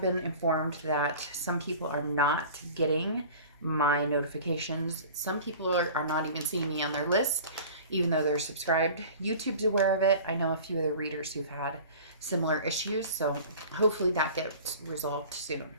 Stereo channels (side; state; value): both; inverted; correlation -0.40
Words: been informed that some people are not getting my notifications. Some people are not even seeing me on their list, even though they're subscribed. YouTube's aware of it. I know a few other readers who've had similar issues, so hopefully that gets resolved soon.